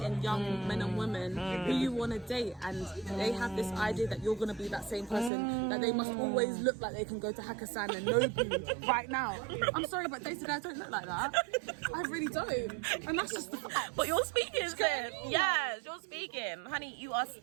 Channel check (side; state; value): left; drops out; at 5.3 s